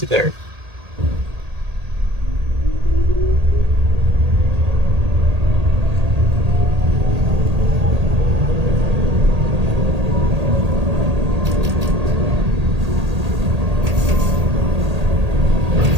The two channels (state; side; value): late; left; 1.8 ms